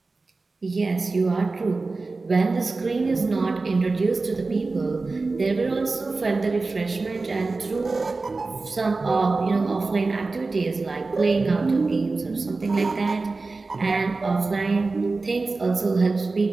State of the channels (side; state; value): left; quieter; 3.7 dB